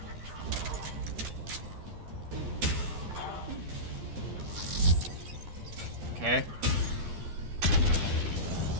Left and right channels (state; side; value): late; left; 12 ms